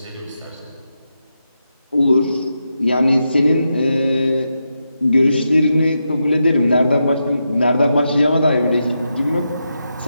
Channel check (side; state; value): both; inverted; correlation -0.86